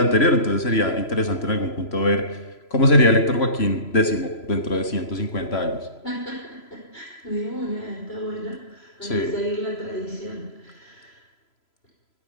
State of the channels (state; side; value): late; right; 3.0 ms